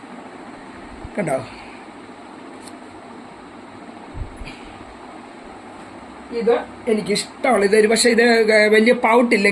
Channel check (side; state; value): both; identical; correlation 1.00